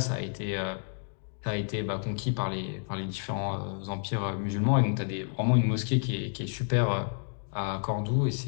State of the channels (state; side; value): silent; right; digital silence